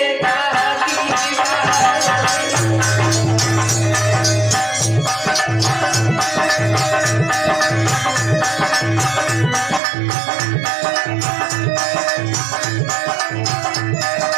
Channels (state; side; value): drops out; left; at 9.8 s